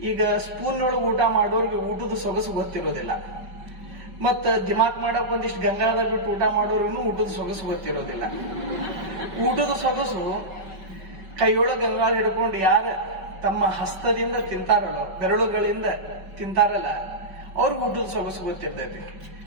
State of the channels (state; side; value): late; left; 5.3 ms